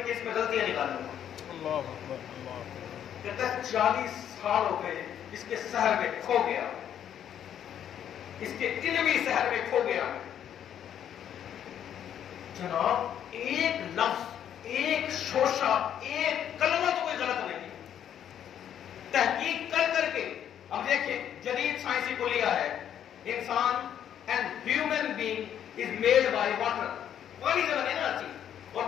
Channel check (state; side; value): quieter; right; 9.7 dB